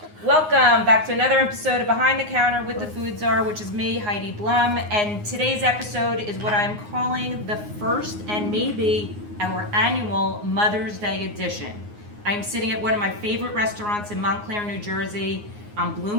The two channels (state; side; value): late; left; 9.6 ms